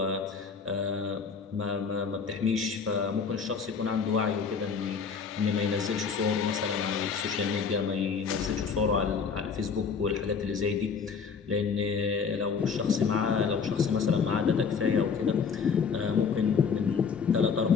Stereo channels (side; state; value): right; quieter; 5.9 dB